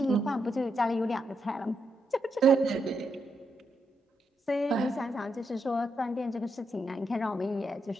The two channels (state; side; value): normal; both; correlation 0.81